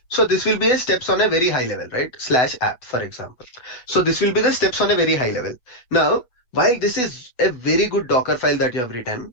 So this will be a steps on a very high level, right? Slash app, for example. So this will be the steps on a very high level. Now, while this is a very good Docker file that you have written,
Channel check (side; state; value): right; late; 8.1 ms